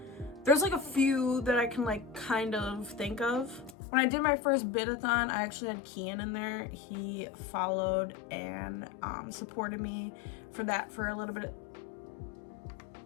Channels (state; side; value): drops out; right; at 3.8 s